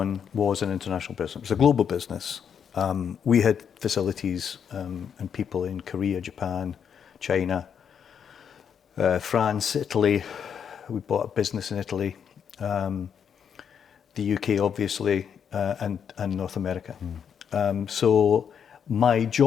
was an international business. It was a global business. We had facilities and people in Korea, Japan, China, France, Italy. We bought a business in Italy, the UK, obviously, and North America. So my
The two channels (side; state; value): right; quieter; 7.7 dB